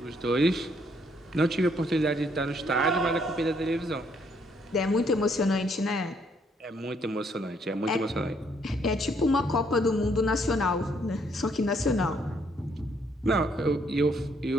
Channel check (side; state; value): both; normal; correlation 0.69